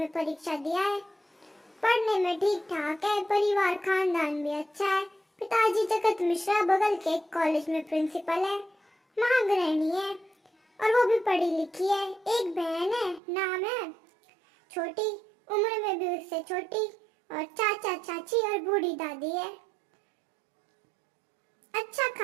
परीक्षा दिया है। पढ़ने में ठीक ठाक है, परिवार खानदान भी अच्छा है। पिताजी जगत मिश्रा बगल के एक कॉलेज में प्रिंसिपल है, महागृहिणी है और वो भी पढ़ी लिखी है। एक बहन है, नाम है छोटी, उम्र में भी उससे छोटी, और चाचा चाची और बूढ़ी दादी है। अच्छा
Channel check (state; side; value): drops out; left; at 13.2 s